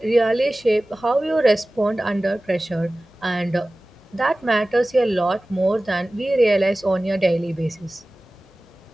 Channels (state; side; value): normal; both; correlation 0.97